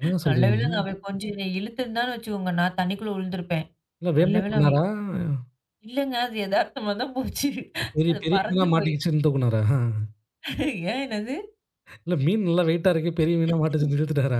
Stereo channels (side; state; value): both; identical; correlation 1.00